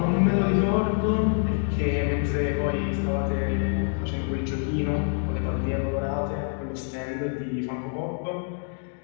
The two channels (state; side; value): silent; right; 55 dB below the other